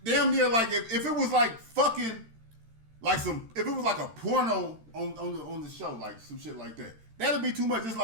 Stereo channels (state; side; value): late; left; 13 ms